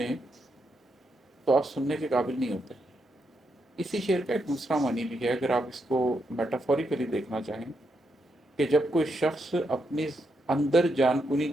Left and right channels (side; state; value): both; normal; correlation 0.81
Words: تو آپ سننے کے قابل نہیں ہوتے۔ اسی شعر کا ایک دوسرا معنی بھی ہے، اگر آپ اس کو میٹافوریکلی دیکھنا چاہیں، کہ جب کوئی شخص اپنی اندر جان کنی